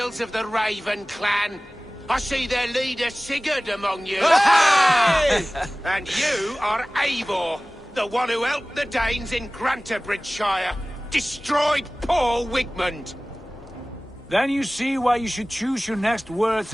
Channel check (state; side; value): normal; both; correlation 0.98